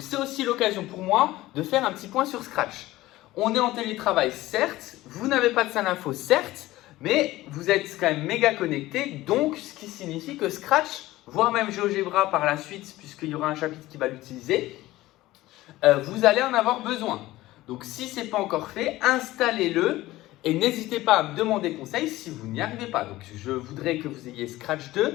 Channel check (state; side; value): quieter; right; 17.2 dB